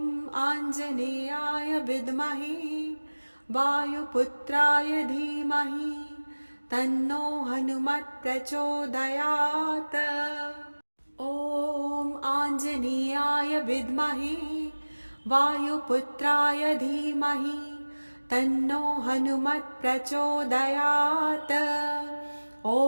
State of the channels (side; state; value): both; inverted; correlation -1.00